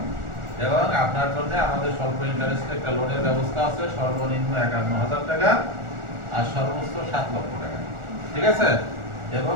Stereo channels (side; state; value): left; late; 1.4 ms